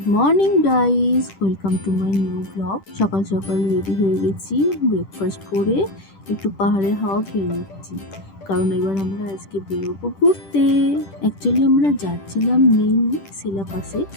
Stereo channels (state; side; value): late; right; 10 ms